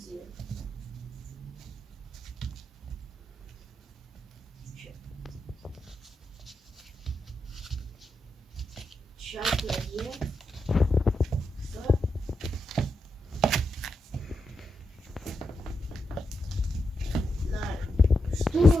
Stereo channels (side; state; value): both; normal; correlation 0.86